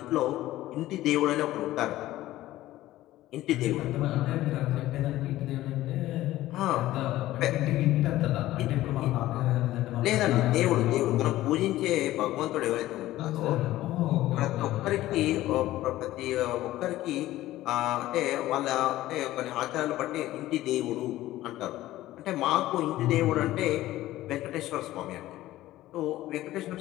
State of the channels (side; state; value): right; quieter; 15.5 dB